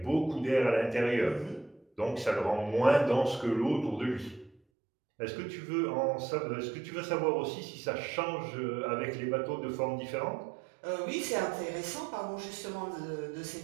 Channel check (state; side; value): drops out; left; at 4.6 s